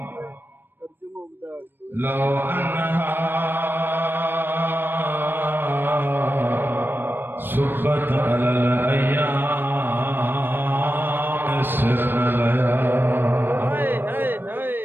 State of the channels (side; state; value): left; late; 0.096 ms